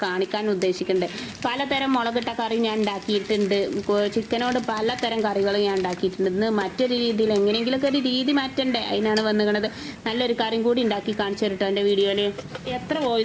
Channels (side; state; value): both; identical; correlation 1.00